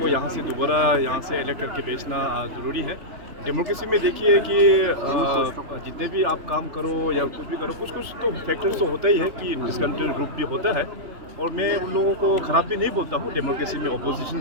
यहाँ से दोबारा यहाँ से इलेक्ट करके भेजना ज़रूरी है। डेमोक्रेसी में देखिए कि जितने भी आप काम करो या कुछ भी करो, कुछ तो फैक्टर्स तो होता ही है कि डिसकंटेंट ग्रुप भी होता है, और मैं उन लोगों को ख़राब भी नहीं बोलता हूँ। डेमोक्रेसी में अपोजिशन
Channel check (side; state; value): left; late; 3.4 ms